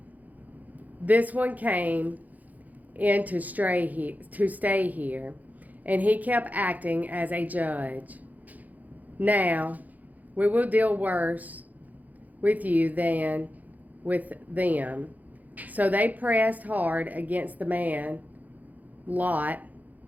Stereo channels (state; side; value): late; left; 0.080 ms